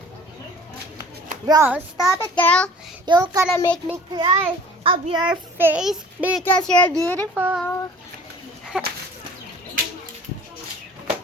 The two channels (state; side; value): normal; both; correlation 0.47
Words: Bro, stop it, girl. You're gonna make me cry of your face because you're beautiful.